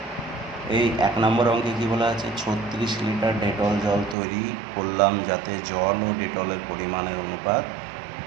এই 1 নম্বর অঙ্কে কী বলা আছে? 36 লিটার ডেটল জল তৈরি করলাম যাতে জল ও ডেটলের পরিমাণের অনুপাত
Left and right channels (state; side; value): drops out; left; at 4.2 s